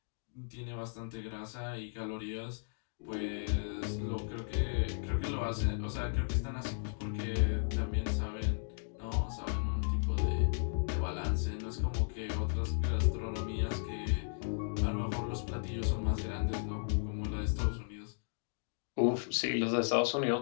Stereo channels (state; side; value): silent; right; digital silence